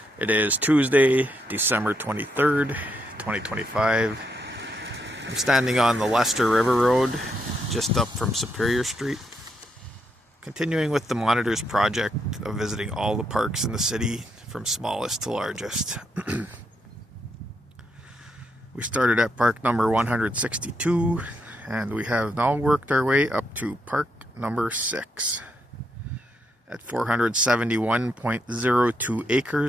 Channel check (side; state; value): both; normal; correlation 0.78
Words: It is Tuesday, December 23rd, 2025. I'm standing on the Leicester River Road, just up from Superior Street. Continuing with the Monitors project of visiting all the parks in the city, from smallest to largest. We started at park number 162, and we have now worked our way up to park number 6. At 471.02